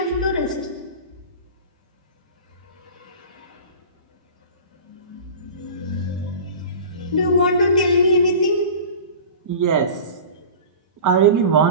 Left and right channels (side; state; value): both; inverted; correlation -0.37